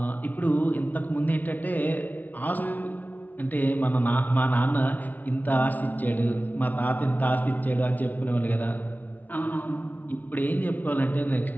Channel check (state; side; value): late; right; 0.078 ms